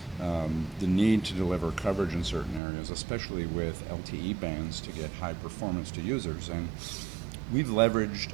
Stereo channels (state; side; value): drops out; left; at 2.6 s